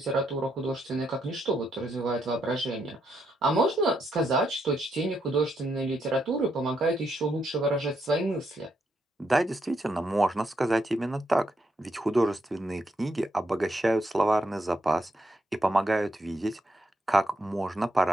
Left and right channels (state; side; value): normal; both; correlation 0.79